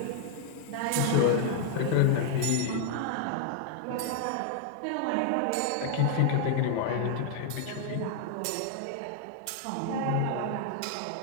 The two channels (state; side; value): different; both; correlation 0.00